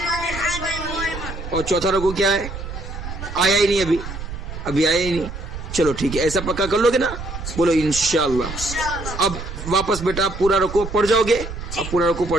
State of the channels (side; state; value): right; noise; rumble, 9 dB below the sound